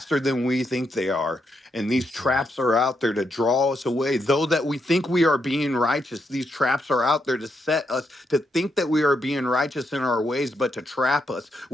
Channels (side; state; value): both; normal; correlation 0.80